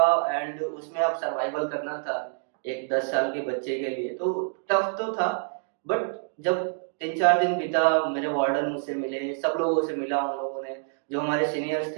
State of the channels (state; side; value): silent; left; 60 dB below the other